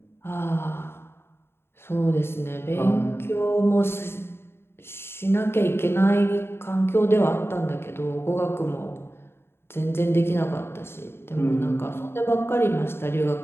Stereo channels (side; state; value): right; late; 0.11 ms